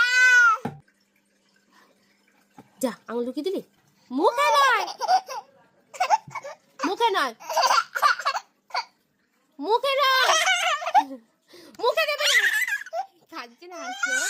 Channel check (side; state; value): both; identical; correlation 1.00